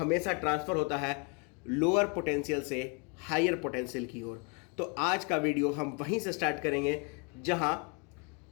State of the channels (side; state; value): right; quieter; 33.7 dB